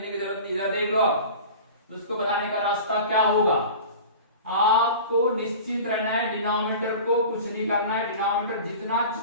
की जरूरत नहीं। इधर देख लो आप उसको बनाने का रास्ता क्या होगा। आपको निश्चित रहना है, डिनोमिनेटर को कुछ नहीं करना है, डिनोमिनेटर जितना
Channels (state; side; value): inverted; both; correlation -0.37